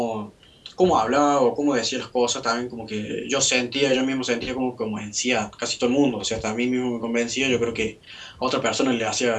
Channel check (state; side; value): identical; both; correlation 1.00